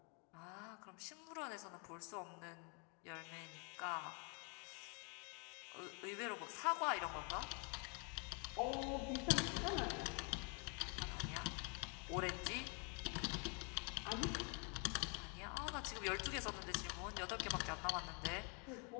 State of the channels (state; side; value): quieter; right; 35.7 dB